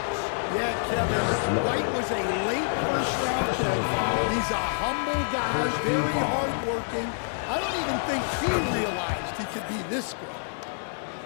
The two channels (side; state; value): right; silent; digital silence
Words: Yeah, Kevin, White was a late first-round pick. He's a humble guy, very hard-working. I don't even think he realized he could be this good.